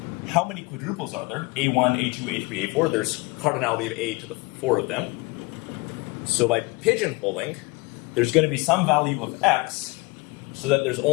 How many quadruples are there? a1, a2, a3, a4. There's cardinality of a to the 4 of them. So by pigeonholing, there's going to be some value of x so that there's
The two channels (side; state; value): right; quieter; 25.9 dB